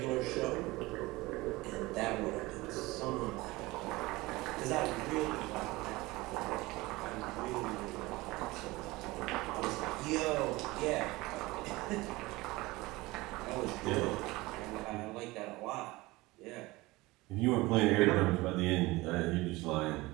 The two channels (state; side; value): quieter; left; 20.9 dB